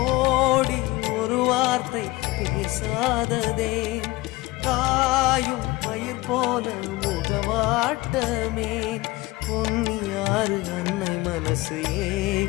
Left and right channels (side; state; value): right; quieter; 20.9 dB